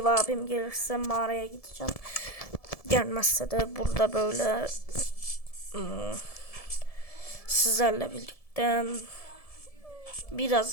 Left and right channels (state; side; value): late; right; 1.7 ms